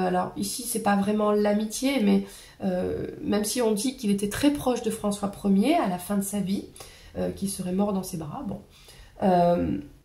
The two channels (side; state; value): both; identical; correlation 1.00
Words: ici c'est pas vraiment l'amitié, mais même si on dit qu'il était très proche de François Ier à la fin de sa vie, qu'il serait mort dans ses bras, bon.